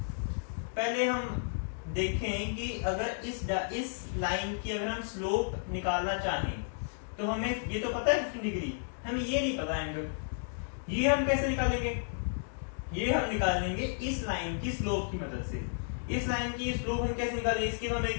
पहले हम देखें कि अगर इस लाइन की अगर हम स्लोप निकालना चाहें तो हमें ये तो पता है 15 डिग्री, हमें ये नहीं पता एंगल, ये हम कैसे निकालेंगे? ये हम निकालेंगे इस लाइन की स्लोप की मदद से। इस लाइन की स्लोप हम कैसे निकालेंगे, इसकी तो हमें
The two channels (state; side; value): silent; right; digital silence